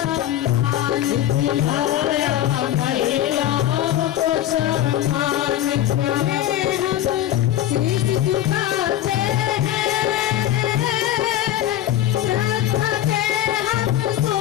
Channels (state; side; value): quieter; right; 12.5 dB